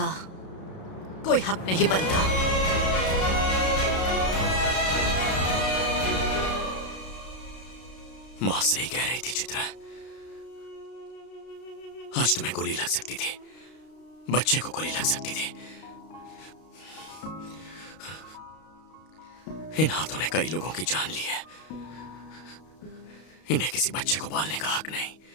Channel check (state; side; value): late; right; 32 ms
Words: कोई हक नहीं बनता। मां सही कह रही थी चित्रा। आज तुम्हें गोली लग सकती थी, बच्चे को गोली लग सकती थी। इन हाथों ने कई लोगों की जान ली है। इन्हें किसी बच्चे को पालने का हक नहीं।